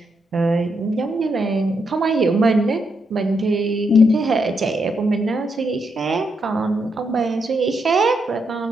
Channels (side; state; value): both; normal; correlation 0.80